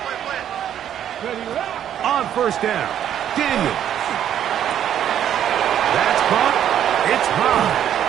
On first down, Daniel. That's caught. It's high.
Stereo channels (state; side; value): quieter; left; 10.2 dB